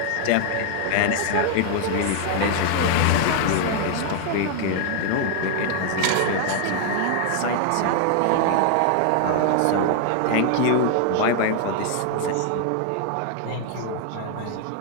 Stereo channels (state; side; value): different; both; correlation 0.00